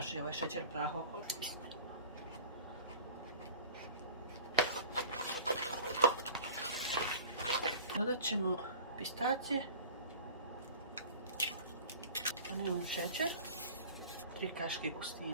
ovaj šećer u prahu okolo. Dodat ćemo pistacije, vanilin šećer, 3 kaške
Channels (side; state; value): both; inverted; correlation -0.43